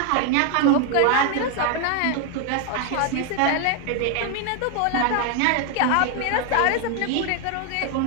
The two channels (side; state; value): both; different; correlation 0.01